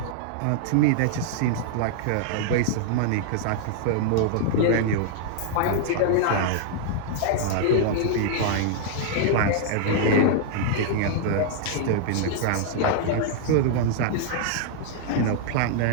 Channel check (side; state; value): both; different; correlation -0.01